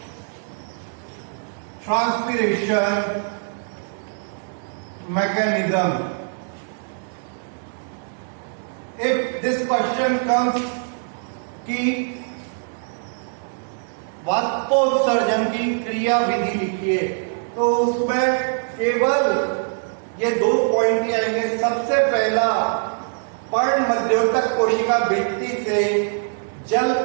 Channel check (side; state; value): left; silent; 64 dB below the other